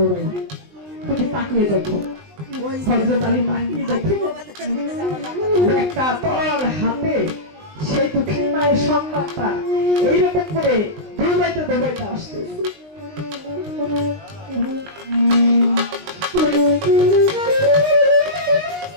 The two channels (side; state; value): left; late; 20 ms